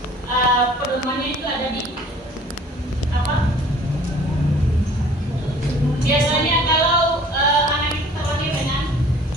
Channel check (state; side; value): normal; both; correlation 0.51